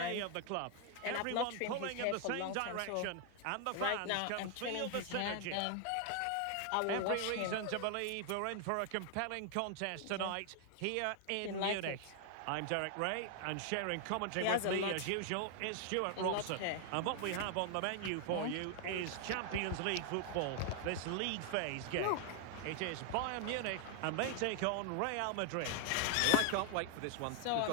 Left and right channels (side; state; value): both; different; correlation 0.00